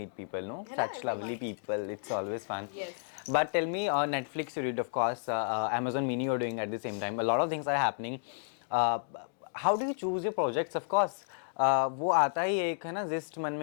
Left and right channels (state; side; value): silent; right; digital silence